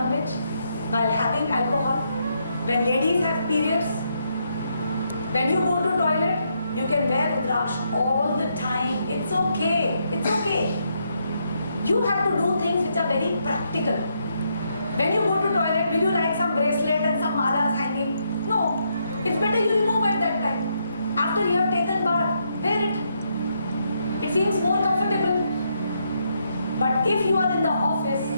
while having alcohol, when ladies have periods, when you go to toilet, you can wear Rudraksh all the time. It's okay. It's okay. You have to do things which are very practical. When you go to toilet, will you like some bracelet and some malas hanging? No. It's better you remove at that time. After you have taken bath, wear it. It seems more comfortable. But if you are in the office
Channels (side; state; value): both; inverted; correlation -0.77